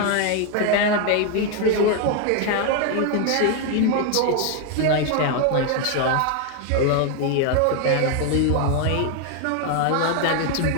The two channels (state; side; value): different; both; correlation 0.01